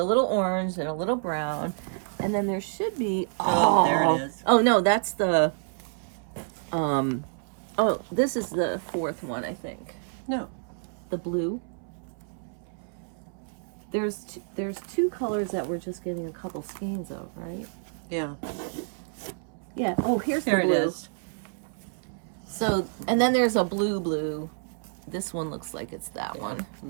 little orange and a little brown. And then there should be there it is. Oh no, that's the oh, this is the 4th one, I think. No. The blue. There's 2 colors that we're just getting a couple skeins of, right? Yeah. Yeah. Oh, here's There the it blue. is. So, and then there's a blue. This one looks like it's that one.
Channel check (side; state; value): left; silent; 59 dB below the other